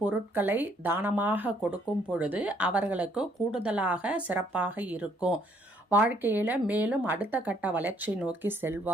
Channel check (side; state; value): both; normal; correlation 0.66